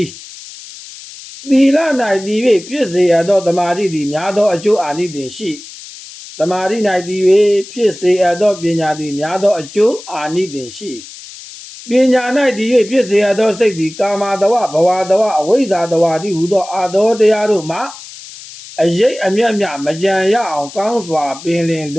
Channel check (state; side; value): noise; left; hiss, 16 dB below the sound